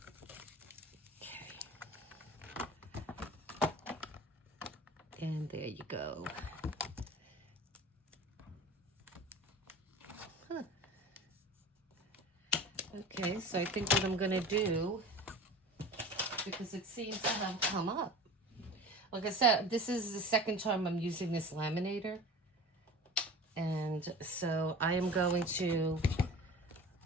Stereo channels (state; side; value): normal; both; correlation 0.37